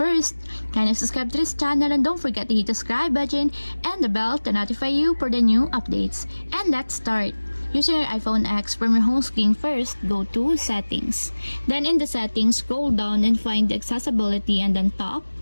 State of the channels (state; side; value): inverted; both; correlation -1.00